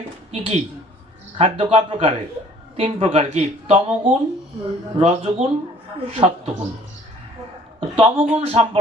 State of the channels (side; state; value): both; normal; correlation 0.55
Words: কি কি খাদ্য? কয় প্রকারের? 3 প্রকার। কি? তমগুণ, রজগুণ, সত্যগুণ। তমগুণ